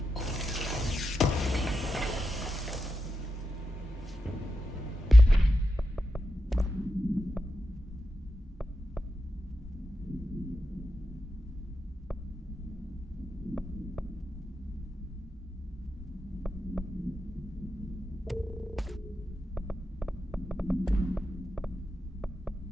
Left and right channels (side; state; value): both; normal; correlation 0.88